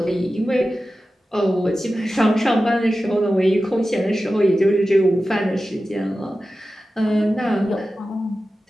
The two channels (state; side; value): normal; both; correlation 0.94